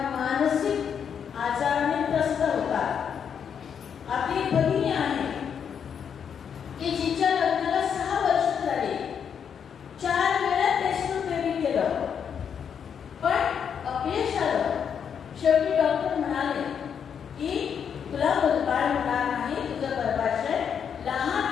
मानसिक आजाराने त्रस्त होतात. आपली भगिनी आहे की जिच्या लग्नाला 6 वर्ष झाली, 4 वेळा टेस्ट बेबी केलं, पण अपयश आलं. शेवटी डॉक्टर म्हणाले की तुला मुलबाळ होणार नाही, तुझं गर्भाशय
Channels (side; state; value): right; quieter; 7.6 dB